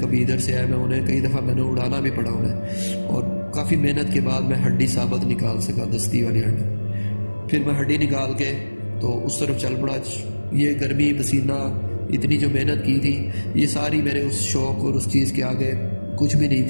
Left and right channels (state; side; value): inverted; both; correlation -1.00